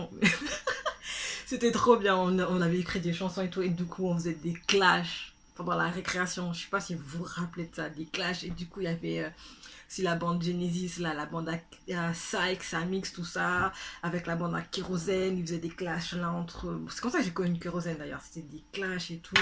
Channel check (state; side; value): identical; both; correlation 1.00